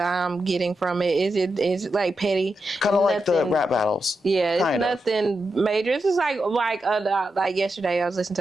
getting from it. It's petty. Kind of like the rap battles. Yeah, it's nothing major. It's just like yesterday I was listening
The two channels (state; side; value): normal; both; correlation 0.87